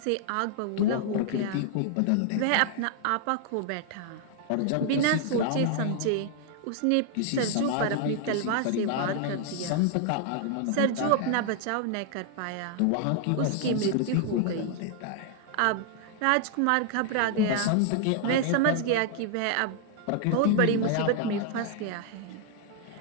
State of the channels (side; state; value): both; different; correlation 0.00